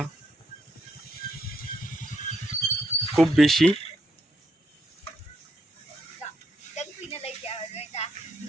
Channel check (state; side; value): normal; both; correlation 0.77